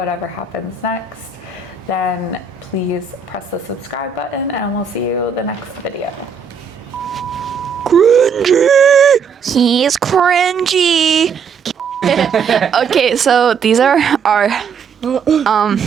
happens next, then please press the subscribe button and we'll see you the next video. Cringy! He's cringy! Okay, so these are our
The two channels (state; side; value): quieter; left; 6.2 dB